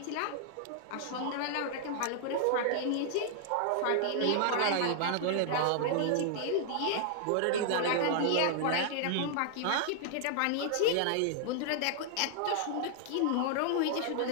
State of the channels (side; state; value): both; different; correlation -0.01